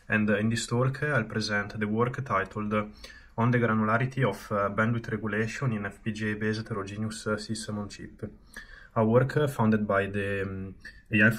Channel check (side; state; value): both; identical; correlation 1.00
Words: and in this talk I'll present the work titled On the Granularity of Bandwidth Regulation in FPGA-based Heterogeneous System on Chip, a work funded by the AI